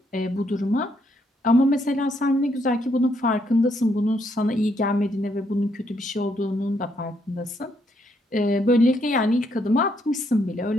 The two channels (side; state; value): both; normal; correlation 0.74